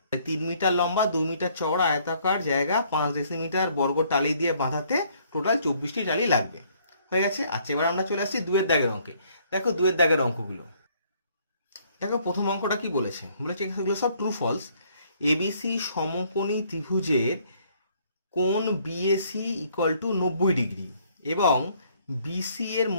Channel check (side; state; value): both; inverted; correlation -0.64